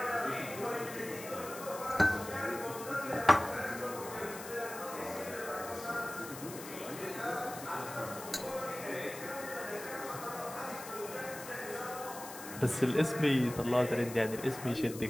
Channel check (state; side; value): noise; left; hiss, 12 dB below the sound